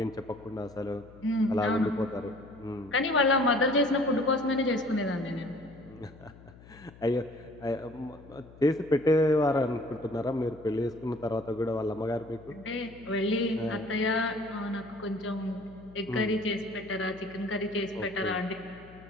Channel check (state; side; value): noise; left; hum, 21 dB below the sound